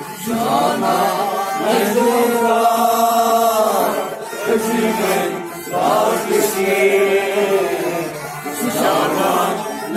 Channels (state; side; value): identical; both; correlation 1.00